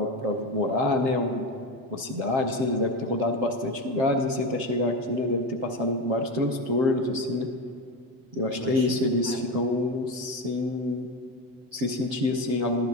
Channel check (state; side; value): late; left; 7.6 ms